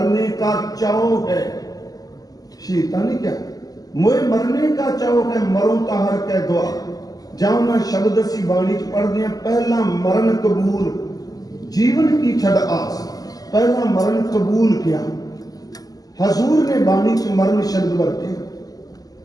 ਕਾ ਚਾਓ ਹੈ। ਸ਼ਹੀਦਾਂ ਨੇ ਕਿਹਾ ਮੋਏ ਮਰਨੇ ਕਾ ਚਾਓ ਹੈ, ਮਰੋ ਤਾਹਰ ਕੈ ਦੁਆ। ਜਾਂ ਨਾ ਸ਼ਬਦ ਅਸੀਂ ਬਾਣੀ 'ਚ ਪੜ੍ਹਦੇ ਹਾਂ, ਪਹਿਲਾ ਮਰਨ ਕਬੂਲ ਜੀਵਨ ਕੀ ਛੱਡ ਆਸ। ਪਹਿਲਾ ਮਰਨ ਕਬੂਲ ਕਿਹਾ। ਹਜ਼ੂਰ ਨੇ ਬਾਣੀ 'ਚ ਮਰਨ ਸ਼ਬਦ ਵਰਤੇ।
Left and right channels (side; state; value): right; late; 0.18 ms